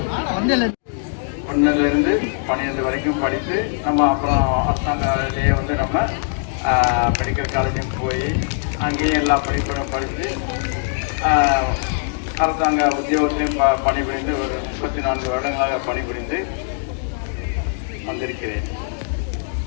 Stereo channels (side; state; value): right; silent; 65 dB below the other